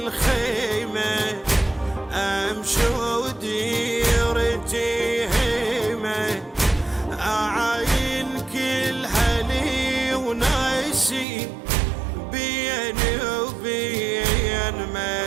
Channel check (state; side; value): drops out; left; at 11.2 s